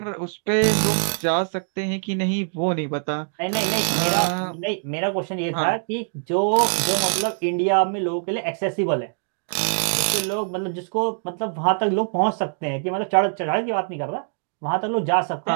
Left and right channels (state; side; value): silent; left; 63 dB below the other